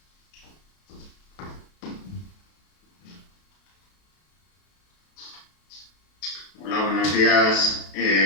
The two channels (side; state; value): right; late; 32 ms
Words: Hola, buenos días.